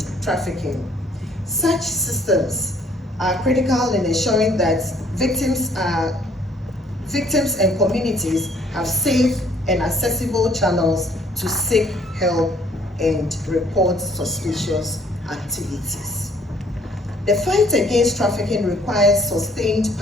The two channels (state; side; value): normal; both; correlation 0.62